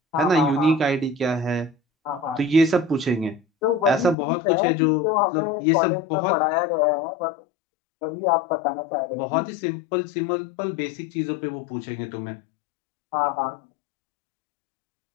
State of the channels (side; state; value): right; drops out; at 4.2 s